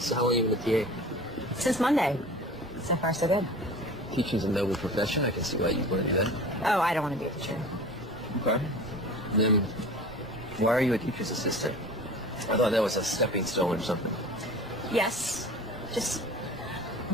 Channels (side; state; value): both; normal; correlation 0.39